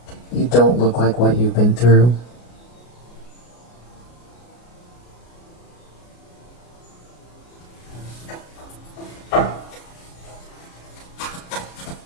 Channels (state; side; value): late; right; 33 ms